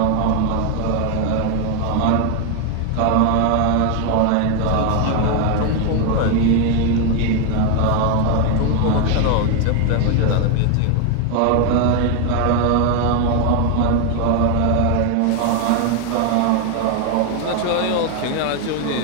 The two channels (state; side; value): different; both; correlation 0.01